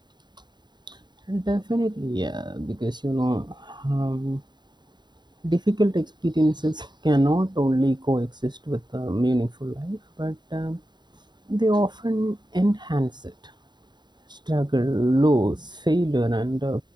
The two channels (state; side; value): late; left; 0.21 ms